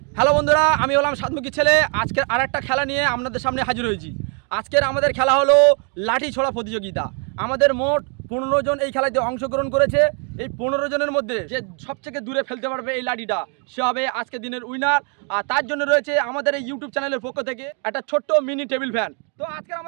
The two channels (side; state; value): left; quieter; 38.9 dB